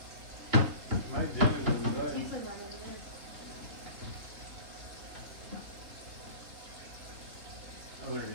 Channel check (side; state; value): left; late; 3.1 ms